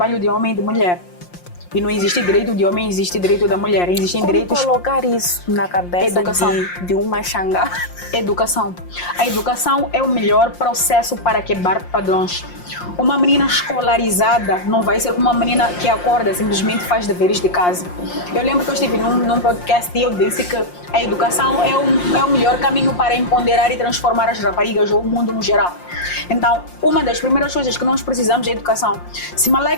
de homem e de mulher. E não existe direito de homem, existe direito da mulher. Existem direitos... colocar isso na cabeça de uma xangá? Educação. A educação é o melhor processo para quebrar padrões. Uma menina escolarizada não vai ser uma menina que acorda simplesmente faz deveres de casa. Eu lembro que eu estive num podcast e eu disse que a educação é o melhor caminho para empoderar e transformar as raparigas ou o mundo no geral. Então, uma das primeiras coisas que nós precisamos é educação. Se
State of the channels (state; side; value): late; right; 5.6 ms